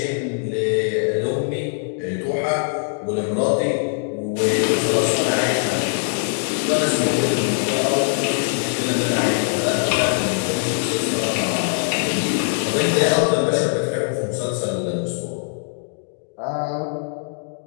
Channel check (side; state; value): right; silent; digital silence